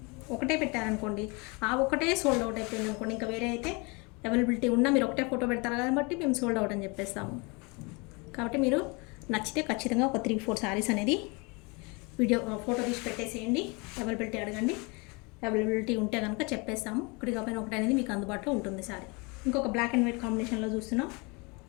ఒకటే పెట్టారనుకోండి, ఆ ఒకటే సోల్డ్ అవుట్ అయిపోయింది అనుకోండి, ఇంకా వేరే అయితే అవైలబిలిటీ ఉన్నా మీరు ఒకటే ఫోటో పెడతారు కాబట్టి మేము సోల్డ్ అవుట్ అని చెప్పేస్తాము. కాబట్టి మీరు నచ్చితే ఖచ్చితంగా ఒక 3-4 శారీస్ అనేది ఫోటో తీసి పెట్టేసేయండి. అవైలబిలిటీ అడగండి, అవైలబిలిటీ ఉంటే కనుక చెప్పేస్తాము. ఒకటి కాకపోయినా ఒకటి అనేది మీకు అందుబాటులో ఉంటుంది శారీ. ఇంకొక బ్లాక్ అండ్ వైట్ కాంబినేషన్లో చూస్తున్నాం.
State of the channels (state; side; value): quieter; right; 28.9 dB